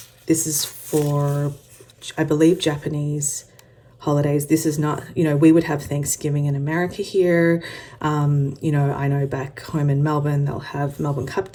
This is for, I believe, Japanese holidays. This is not, you know, we would have Thanksgiving in America here. You know, I know back home in Melbourne, they'll have Melbourne Cup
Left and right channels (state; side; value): identical; both; correlation 1.00